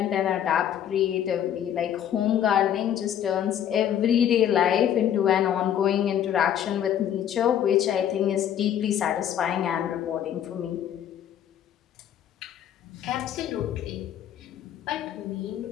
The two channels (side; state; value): right; quieter; 10.1 dB